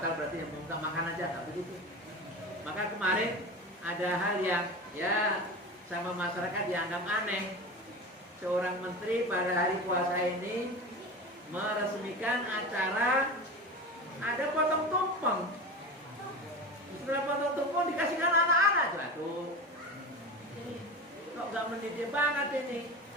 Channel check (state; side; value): normal; both; correlation 0.29